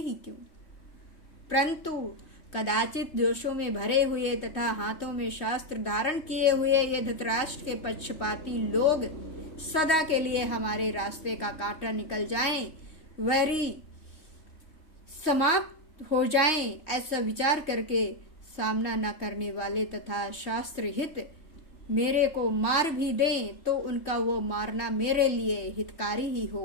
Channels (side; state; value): right; late; 3.1 ms